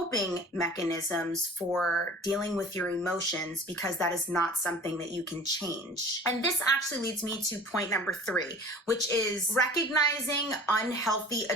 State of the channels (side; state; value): both; normal; correlation 0.43